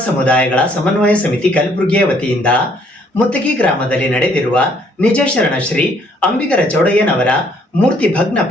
ಸಮುದಾಯಗಳ ಸಮನ್ವಯ ಸಮಿತಿ ಕಲಬುರಗಿಯ ವತಿಯಿಂದ ಮುತ್ತಗಿ ಗ್ರಾಮದಲ್ಲಿ ನಡೆದಿರುವ ನಿಜ ಶರಣ ಶ್ರೀ ಅಂಬಿಗರ ಚೌಡಯ್ಯನವರ ಮೂರ್ತಿ ಭಗ್ನ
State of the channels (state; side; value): normal; both; correlation 0.65